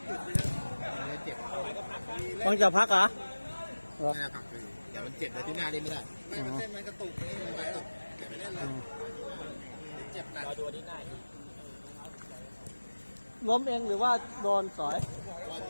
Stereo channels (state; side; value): inverted; both; correlation -1.00